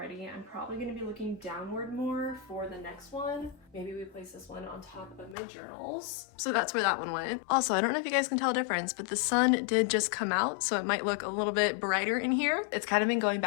I'm probably gonna be looking downward more for the next one. Maybe we place this one on top of my journals. So that's where that one went. Also, I don't know if you guys can tell a difference, but the sun did just come out, so it might look a little bit brighter in here. It's kind of been going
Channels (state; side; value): drops out; right; at 5.4 s